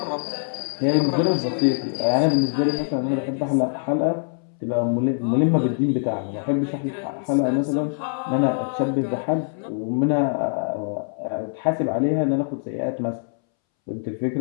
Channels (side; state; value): right; silent; 63 dB below the other